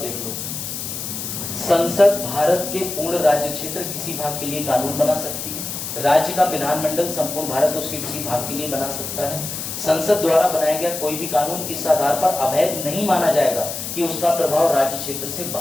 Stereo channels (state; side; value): noise; left; hiss, 6 dB below the sound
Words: लो। संसद भारत के पूर्ण राज्य क्षेत्र किसी भाग के लिए कानून बना सकती है। राज्य का विधानमंडल संपूर्ण भारत उसके किसी भाग के लिए बना सकता है। संसद द्वारा बनाया गया कोई भी कानून इस आधार पर अवैध नहीं माना जाएगा कि उसका प्रभाव राज्य क्षेत्र से